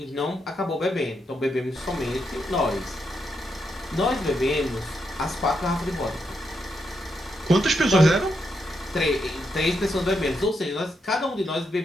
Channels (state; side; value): normal; both; correlation 0.82